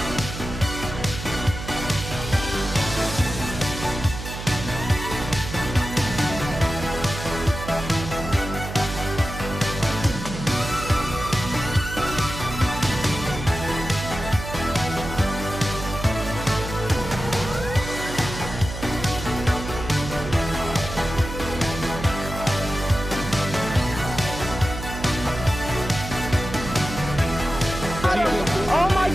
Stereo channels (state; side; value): noise; right; hum, 8 dB below the sound